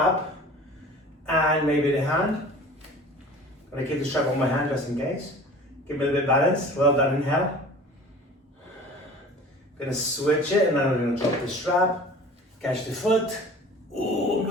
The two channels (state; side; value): normal; both; correlation 0.43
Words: and maybe the hand? I'm gonna keep the strap on my hand just in case. Give me a little bit of balance. Well done, inhale. Gonna switch it and then I'm gonna drop the strap, catch the foot. Oh, I'm